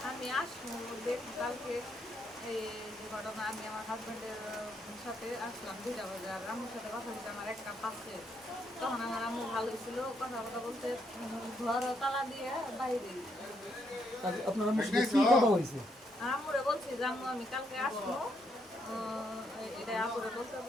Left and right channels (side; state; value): both; normal; correlation 0.76